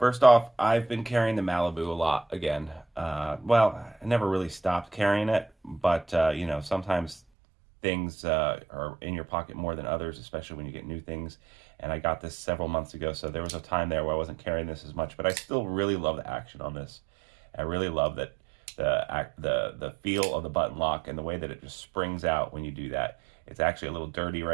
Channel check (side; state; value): left; drops out; at 7.2 s